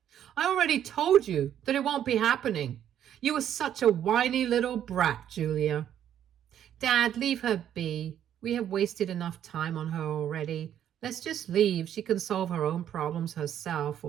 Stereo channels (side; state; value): left; quieter; 10.2 dB